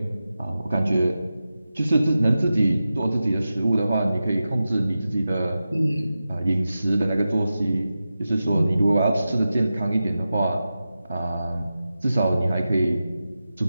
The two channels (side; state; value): both; inverted; correlation -0.92